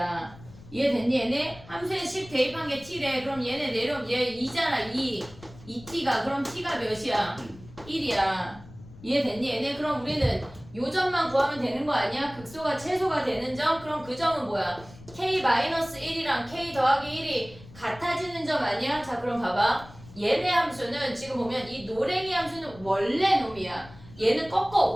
이해됐니 얘네? 함수에 10 대입한 게 t래. 그럼 얘네 내려오면 얘 2잖아 2t가. 그럼 t가 몇이야? 1이야. 이해됐니 얘네? 그럼 우리는 요 점만 구하면 되는 거 아니야? 극소가 최소가 되는 점? 그럼 그 점은 뭐야? k-1이랑 k 더하기 1이 같아지는 점 아니야? 자 그럼 봐봐. 얘네 함수는 지금 보면 이 노랭이 함수는 원래 놈이야. 얘는 꺾어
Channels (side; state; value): left; noise; rumble, 19 dB below the sound